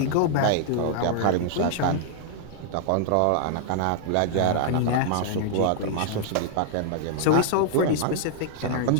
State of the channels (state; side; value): different; both; correlation -0.01